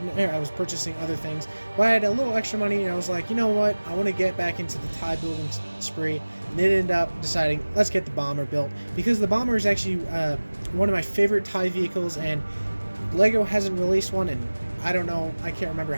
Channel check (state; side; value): inverted; both; correlation -1.00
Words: was purchasing other things, but I had a little extra money, and I was like, you know what, I want to get back into the TIE building spree, and it ended up deciding, let's get the bomber built, because the bomber is actually one of my favorite TIE vehicles, and Lego hasn't released one in, I don't know, I can't remember